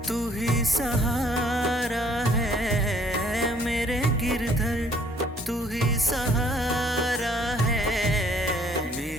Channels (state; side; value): normal; both; correlation 0.61